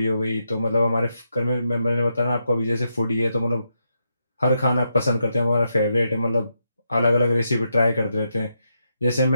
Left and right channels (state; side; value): inverted; both; correlation -0.82